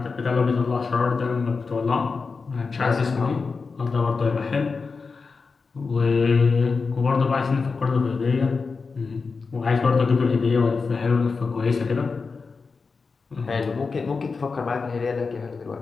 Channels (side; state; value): right; quieter; 4.6 dB